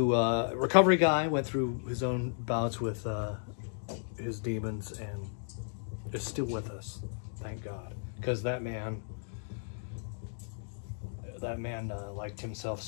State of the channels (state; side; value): silent; right; digital silence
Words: recovery guy, went through his own bouts with his demons and is still with us, thank God. Because that man liked himself